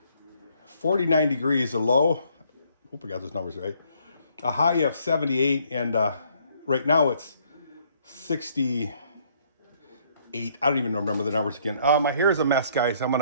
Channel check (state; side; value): inverted; both; correlation -0.66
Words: 49 degrees, a low. Hope I got those numbers right. A high of 78, and right now it's 68. I don't even remember the numbers again. My hair is a mess, guys.